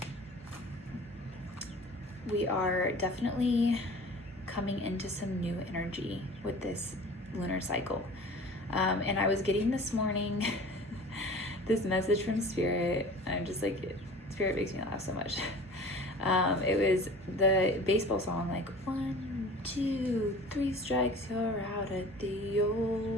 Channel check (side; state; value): both; normal; correlation 0.42